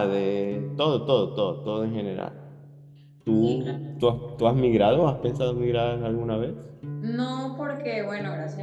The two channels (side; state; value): both; identical; correlation 1.00